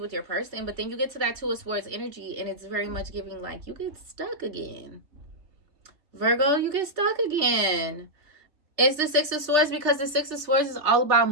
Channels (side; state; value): left; late; 3.3 ms